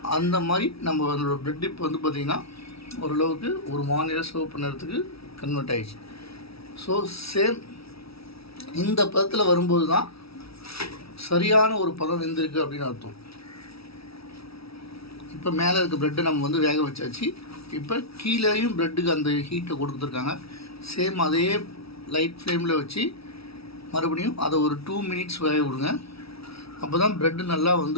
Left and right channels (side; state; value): right; late; 0.76 ms